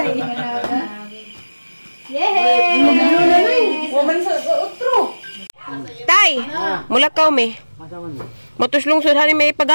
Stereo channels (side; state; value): both; inverted; correlation -1.00